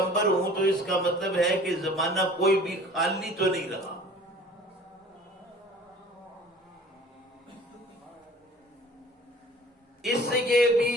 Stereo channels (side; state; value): both; normal; correlation 0.48